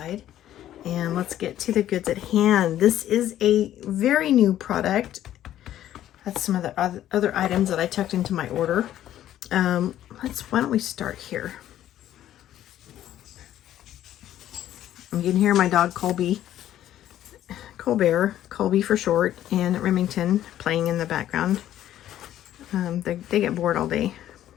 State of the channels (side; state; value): right; quieter; 12.2 dB